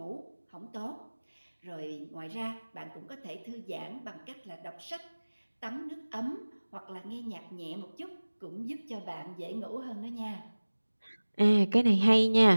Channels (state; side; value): inverted; both; correlation -1.00